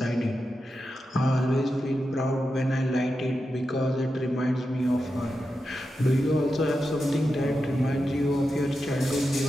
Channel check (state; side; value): normal; both; correlation 0.89